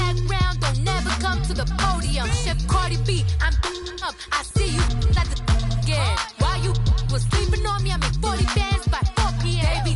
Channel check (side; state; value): both; identical; correlation 1.00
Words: don't never come to the podium. Chef Cardi B, I'm up. I see you at the again. While you was sleeping on me, I make 40 bands by 4 p.m. Baby,